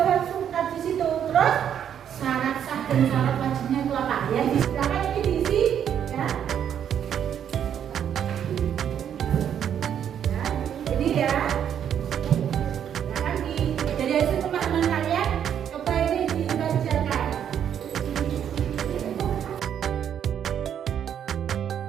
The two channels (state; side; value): quieter; left; 9.1 dB